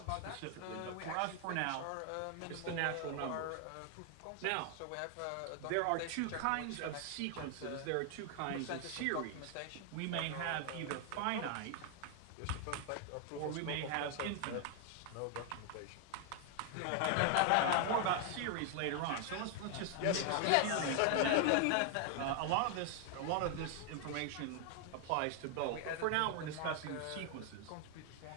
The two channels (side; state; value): both; different; correlation 0.00